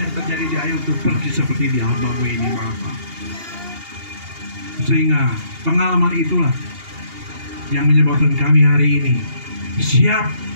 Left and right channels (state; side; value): late; left; 2.8 ms